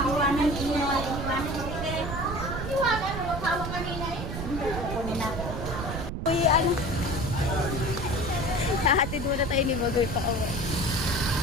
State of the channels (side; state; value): right; noise; rumble, 5 dB below the sound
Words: Uy, ano? Hahatid muna tayo ni Bagoy pa uwi.